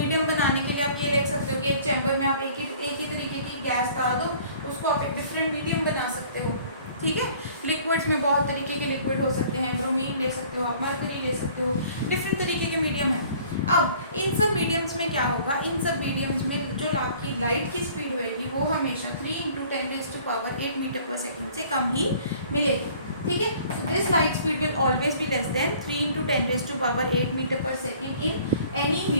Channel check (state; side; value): inverted; both; correlation -0.53